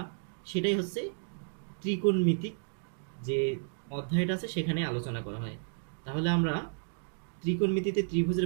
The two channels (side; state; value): left; silent; digital silence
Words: সেটাই হচ্ছে ত্রিকোণমিতিক যে অধ্যায়টা আছে সেখানে আলোচনা করা হয়। তাহলে আমরা ত্রিকোণমিতিতে